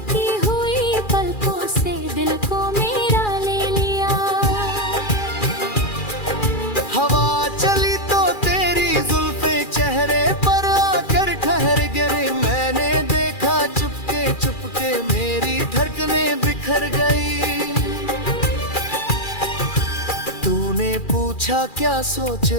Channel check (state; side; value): late; right; 2.4 ms